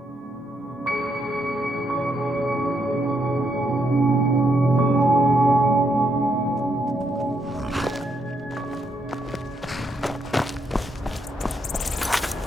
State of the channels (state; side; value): normal; both; correlation 0.78